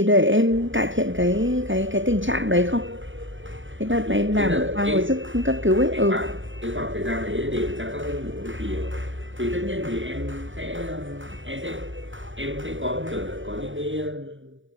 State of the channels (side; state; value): left; late; 0.56 ms